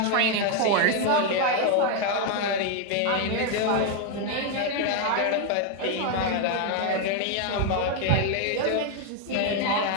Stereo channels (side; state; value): both; different; correlation 0.01